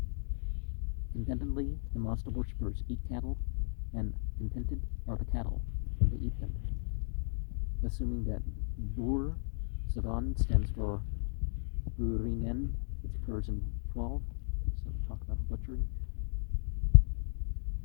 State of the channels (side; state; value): right; silent; digital silence